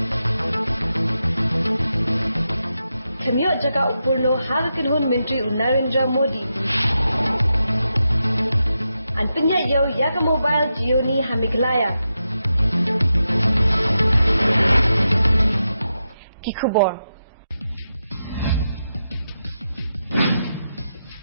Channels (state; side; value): inverted; both; correlation -0.87